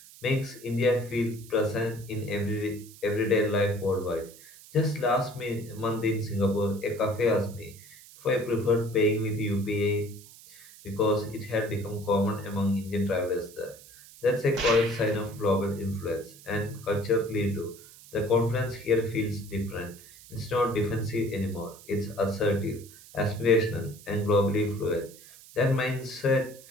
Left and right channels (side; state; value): right; noise; hiss, 20 dB below the sound